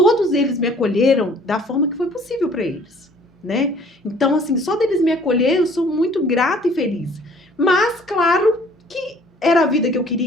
eles me acolheram da forma que foi possível pra eles, né? Então, assim, só deles me acolher, eu sou muito grata e feliz. Mas, claro que era a vida que eu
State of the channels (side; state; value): both; normal; correlation 0.55